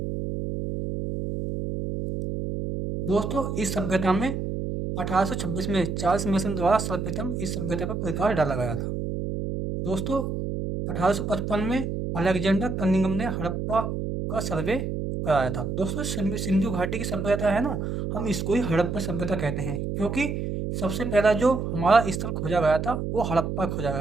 दोस्तों इस सभ्यता में 1826 में चार्ल्स मेसन द्वारा सर्वप्रथम इस सभ्यता पर प्रकाश डाला गया था। दोस्तों, 1855 में अलेक्जेंडर कनिंघम ने हड़प्पा का सर्वे कराया था। दोस्तों, सिंधु घाटी की सभ्यता है ना, हम इसको ही हड़प्पा सभ्यता कहते हैं क्योंकि सबसे पहला जो हमारा स्थल खोजा गया था वो हड़प्पा खोजा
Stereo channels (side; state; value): right; noise; hum, 3 dB below the sound